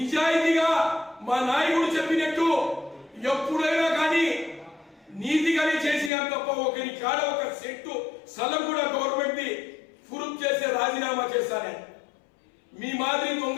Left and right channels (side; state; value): right; drops out; at 6.1 s